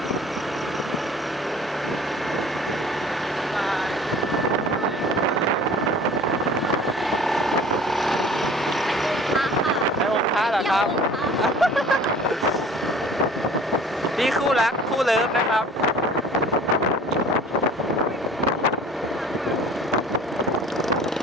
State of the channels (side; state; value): both; normal; correlation 0.47